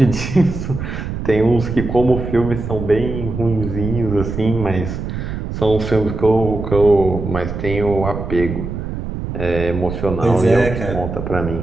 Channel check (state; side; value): noise; right; rumble, 6 dB below the sound